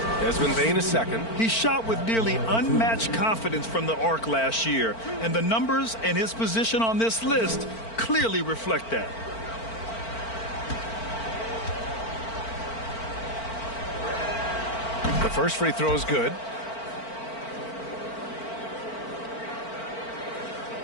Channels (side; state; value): right; late; 4.4 ms